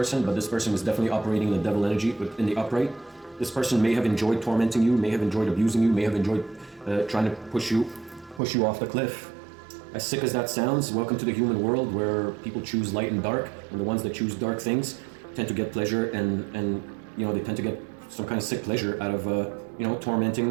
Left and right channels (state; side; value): drops out; left; at 8.4 s